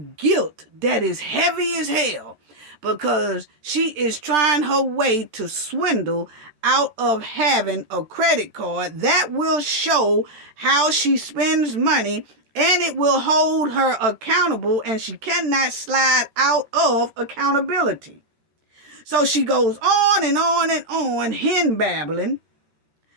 guilt that is heavy as hell, because she is trying her way to swindle out of having a credit card that will show how she spends money, and it will hold her accountable, and she cannot slide out of accountability. So she goes on and on and on, hen babbling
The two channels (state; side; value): late; left; 13 ms